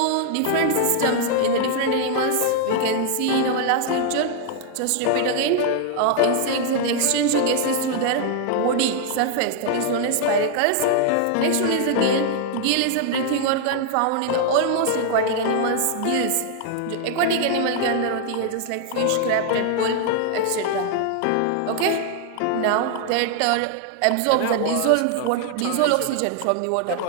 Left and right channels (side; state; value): both; different; correlation 0.00